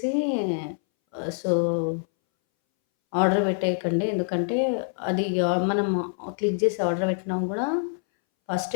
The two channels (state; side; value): silent; right; 61 dB below the other